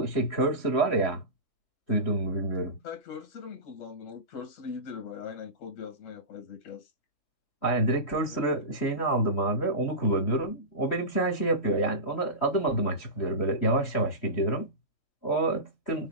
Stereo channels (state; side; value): late; right; 3.1 ms